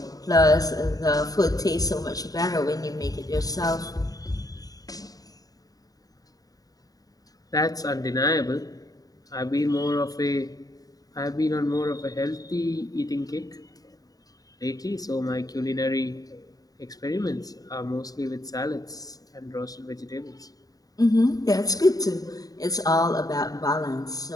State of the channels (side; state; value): right; late; 0.18 ms